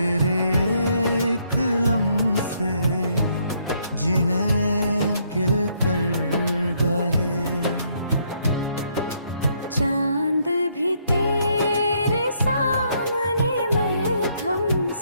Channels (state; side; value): inverted; both; correlation -0.71